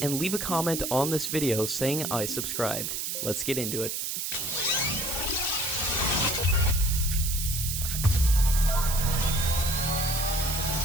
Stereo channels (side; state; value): right; noise; hiss, 3 dB below the sound